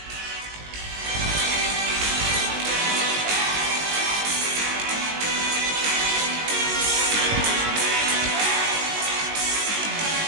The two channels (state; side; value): late; left; 19 ms